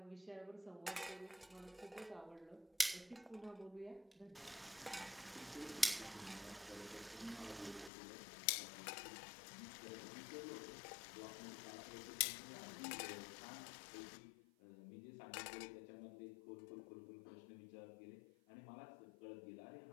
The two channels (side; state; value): right; drops out; at 7.9 s